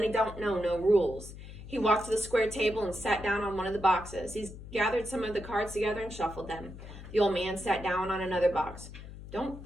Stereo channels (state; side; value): noise; left; hum, 13 dB below the sound